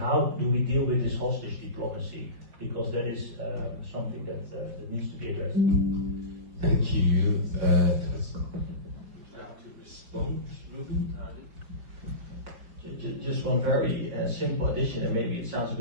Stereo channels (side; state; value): left; late; 5.0 ms